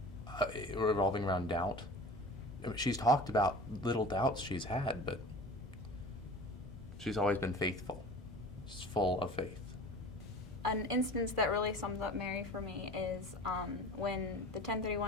revolving around doubt. I mean, she's talked about little doubts she's had, but she's always been faithful. She's full of faith. An instance that really sums up Mary for me is when the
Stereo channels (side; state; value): both; normal; correlation 0.39